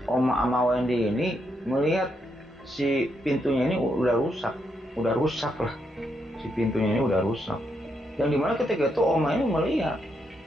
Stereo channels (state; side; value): normal; both; correlation 0.80